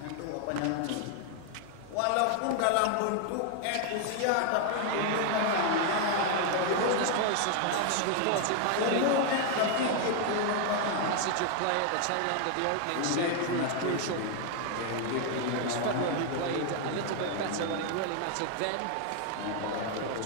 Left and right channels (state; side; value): different; both; correlation 0.00